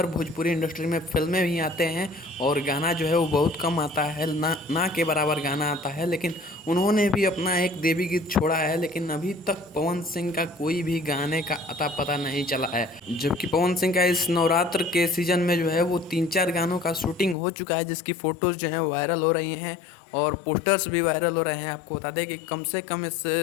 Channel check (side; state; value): right; drops out; at 17.4 s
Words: भोजपुरी इंडस्ट्री में फिल्में भी आते हैं और गाना जो है वो बहुत कम आता है, ना के बराबर गाना आता है। लेकिन उन्होंने भी अपना एक देवी गीत छोड़ा है, लेकिन अभी तक पवन सिंह का कोई भी गाने का अता पता नहीं चला है। जबकि पवन सिंह का इस नवरात्र के सीजन में जो है वो 3-4 गानों का शूटिंग हो चुका है, जिसकी फ़ोटोज़ जो हैं वायरल हो रही हैं और पोस्टर्स भी वायरल हो रहे हैं। आपको बता दें कि कम से कम इस